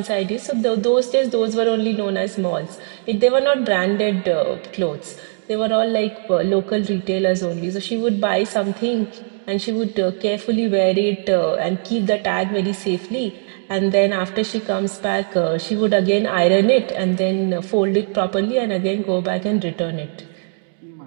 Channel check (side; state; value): left; silent; 60 dB below the other